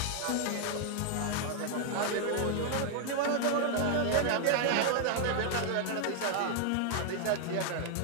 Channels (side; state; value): both; different; correlation 0.00